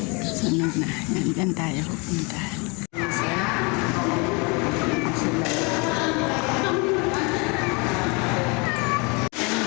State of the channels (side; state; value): right; quieter; 30.5 dB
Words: Sunog na. Yan, dyan tayo pupunta.